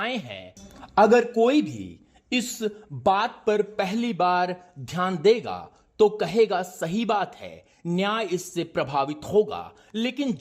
हैं। अगर कोई भी इस बात पर पहली बार ध्यान देगा तो कहेगा सही बात है, न्याय इससे प्रभावित होगा। लेकिन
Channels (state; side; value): identical; both; correlation 1.00